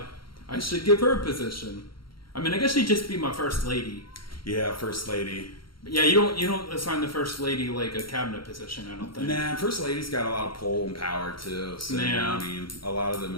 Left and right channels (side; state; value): right; late; 0.73 ms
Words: I should give her a position. I mean, I guess she'd just be my first lady. Yeah, first lady. Yeah, you don't assign the first lady like a cabinet position, I don't think. Nah, first lady's got a lot of pull and power too. So I mean, a lot of them